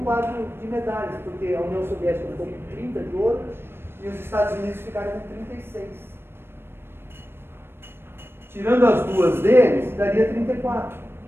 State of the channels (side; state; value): left; late; 0.11 ms